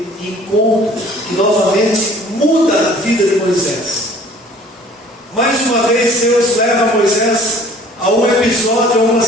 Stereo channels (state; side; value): normal; both; correlation 0.52